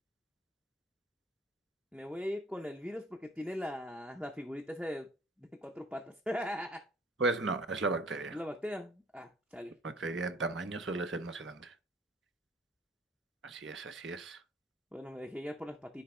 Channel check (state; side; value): normal; both; correlation 0.55